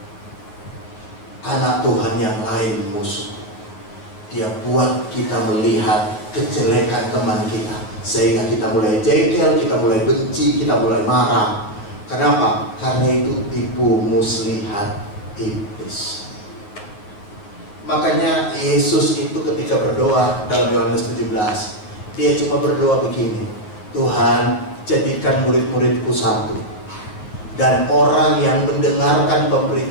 Anak Tuhan yang lain musuh. Dia buat kita melihat kejelekan teman kita, sehingga kita mulai jengkel, kita mulai benci, kita mulai marah. Kenapa? Karena itu tipu muslihat iblis. Makanya Yesus itu ketika berdoa dalam Yohanes 17, dia cuma berdoa begini, Tuhan jadikan murid-muridku satu. Dan orang yang mendengarkan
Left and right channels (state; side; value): late; right; 9.6 ms